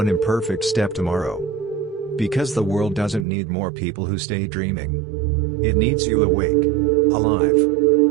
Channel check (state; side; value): drops out; left; at 3.2 s